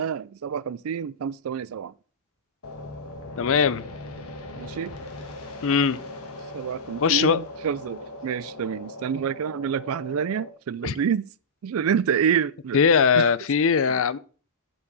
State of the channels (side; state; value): both; normal; correlation -0.17